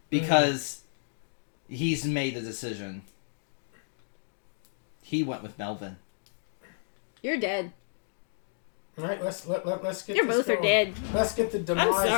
because he's made a decision. He went with Melvin. You're dead. All right, let's get You this both going. are dead. Let's get the demise of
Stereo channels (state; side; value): silent; right; digital silence